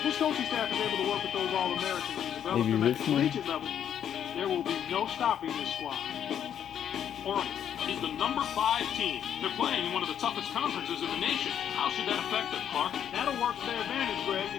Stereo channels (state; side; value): quieter; right; 9.3 dB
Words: this coaching staff is able to work with those All-Americans and develop Maybe them at the Richmond? collegiate level, there will be no stopping this squad. Oregon is the #5 team. They're playing in one of the toughest conferences in the nation. How should that affect them, Clark? That'll work to their advantage, Greg,